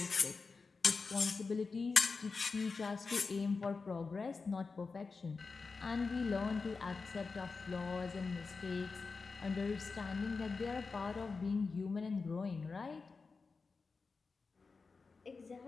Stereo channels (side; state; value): right; quieter; 4.5 dB